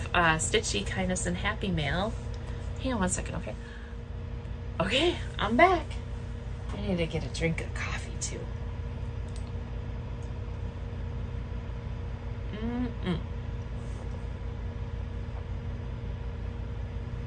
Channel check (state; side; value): identical; both; correlation 1.00